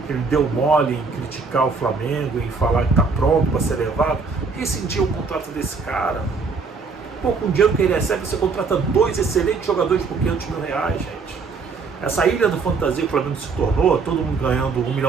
deu mole em criticar o Flamengo, em falar que está pronto para ser levado. Rescindiu o contrato desse cara. Pô, com o dinheiro que ele recebe, você contrata 2 excelentes jogadores por 500 mil reais, gente. Essa ilha do fantasia que o Flamengo se tornou, todo mundo ganhando 1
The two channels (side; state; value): left; quieter; 4.7 dB